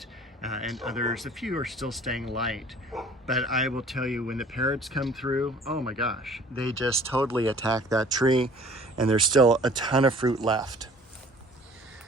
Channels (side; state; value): both; normal; correlation 0.51